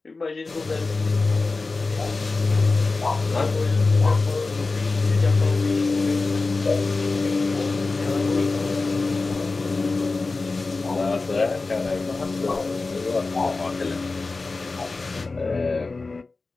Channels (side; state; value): right; quieter; 3.7 dB